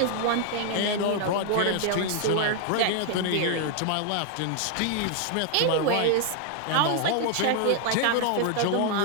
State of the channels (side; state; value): both; different; correlation 0.00